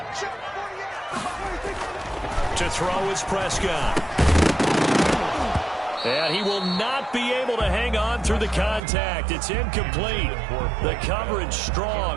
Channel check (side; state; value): left; drops out; at 8.8 s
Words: To throw is Prescott. And he will not be able to hang on through the contact. It's incomplete. The coverage